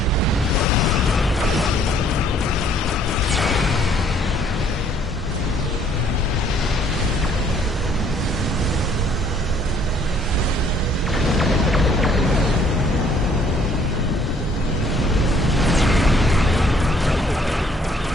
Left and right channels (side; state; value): both; normal; correlation 0.62